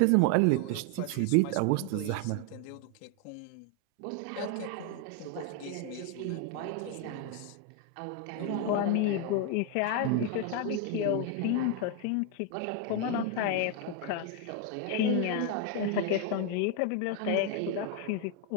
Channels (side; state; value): both; different; correlation 0.01